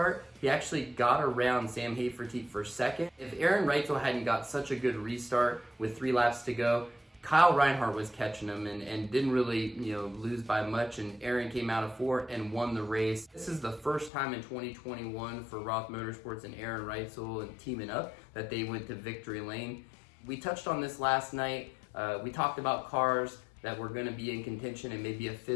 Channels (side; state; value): right; drops out; at 14.1 s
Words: he actually got around Sam Hafertepe for second. If Aaron Reitzel hadn't got such a good restart with 3 laps to go, Kyle Reinhardt was catching him and didn't really lose by much, and Aaron came out of 4 and won the race. This is the first time in 2021 for Roth Motorsports and Aaron Reitzel and teaming up that they went to victory lane. We touched on this last night. We talked about cars that were going to be in contention and maybe a